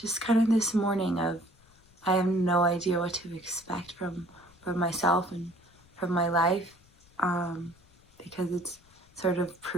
kind of this morning of I have no idea what to expect from myself and from my life, because it's sort of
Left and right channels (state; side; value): noise; left; rumble, 29 dB below the sound